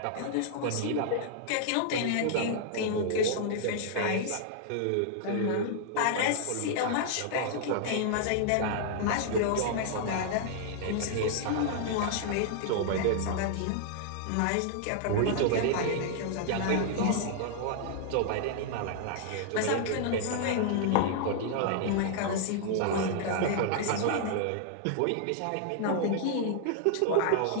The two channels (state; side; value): different; both; correlation -0.01